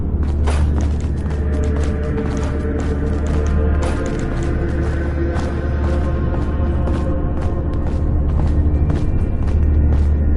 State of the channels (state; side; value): identical; both; correlation 1.00